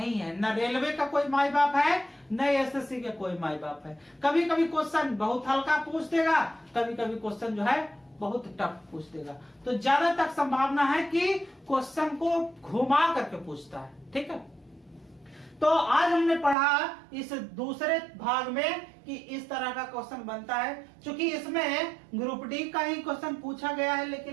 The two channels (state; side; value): drops out; left; at 16.6 s